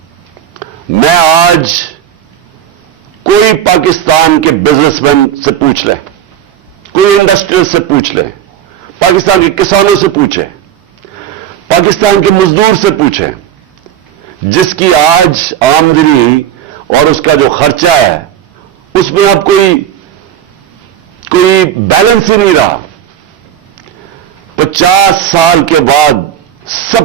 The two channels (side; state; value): left; quieter; 10.3 dB